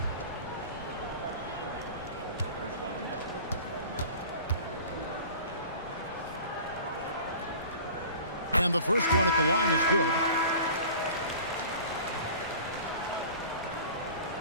And the first one at the line is good.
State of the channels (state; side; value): inverted; both; correlation -0.41